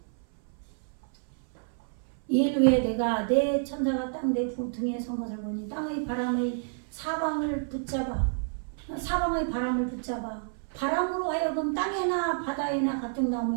이일 후에 내가 내 천사가 땅 내 등에 선 것을 보니 땅의 바람의 사방의 바람을 붙잡아 바람으로 하여금 땅에나 바다에나 각종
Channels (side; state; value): left; silent; 57 dB below the other